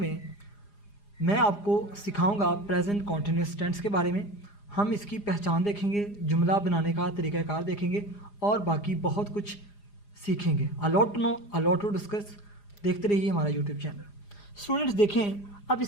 मैं आपको सिखाऊंगा प्रेजेंट कॉन्टिन्यूस टेंस के बारे में। हम इसकी पहचान देखेंगे, जुमला बनाने का तरीक़ाकार देखेंगे और बाकी बहुत कुछ सीखेंगे। A lot to know, a lot to discuss. देखते रहिए हमारा यूट्यूब चैनल। स्टूडेंट्स देखें अब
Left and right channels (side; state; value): right; late; 4.9 ms